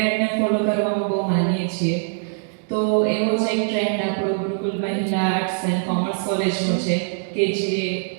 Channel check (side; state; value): left; silent; digital silence